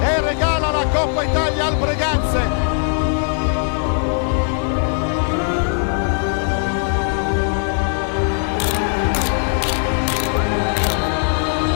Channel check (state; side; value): silent; right; 56 dB below the other